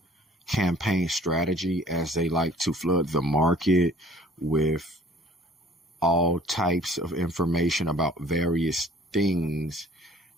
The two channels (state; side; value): normal; both; correlation 0.53